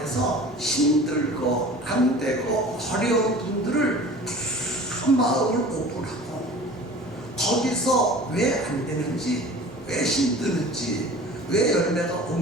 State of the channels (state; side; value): normal; both; correlation 0.42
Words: 힘들고 안 되고 어려운 분들을 다 마음을 오픈하고 거기서 왜 안 되는지 왜 힘드는지 왜 열매가